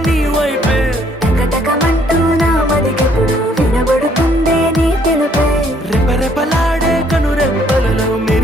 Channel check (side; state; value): both; normal; correlation 0.65